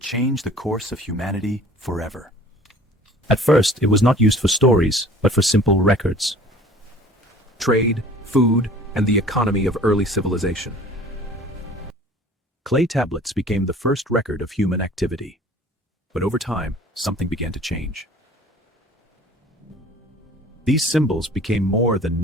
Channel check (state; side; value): normal; both; correlation 0.48